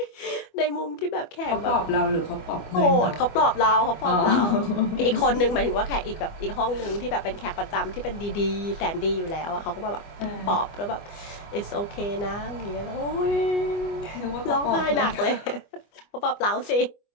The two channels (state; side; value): late; right; 25 ms